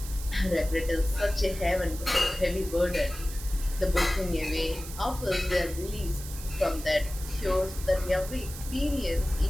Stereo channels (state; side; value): noise; right; hiss, 12 dB below the sound